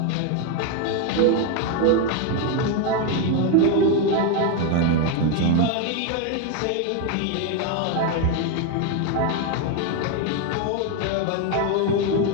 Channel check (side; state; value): both; different; correlation 0.01